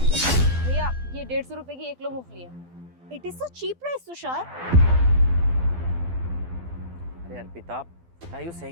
भैया ये 150 रुपए की 1 किलो मूंगफली है। It is so cheap price, Tushar. अरे Arpita, what are you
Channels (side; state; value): left; late; 12 ms